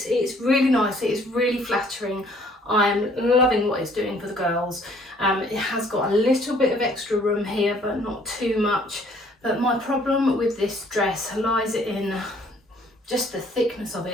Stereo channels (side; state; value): both; normal; correlation 0.60